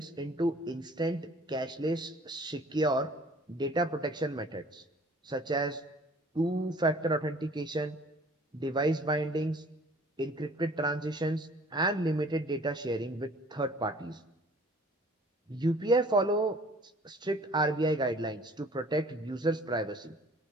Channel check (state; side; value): normal; both; correlation 0.52